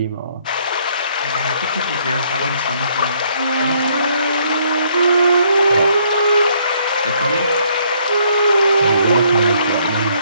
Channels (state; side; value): inverted; both; correlation -0.67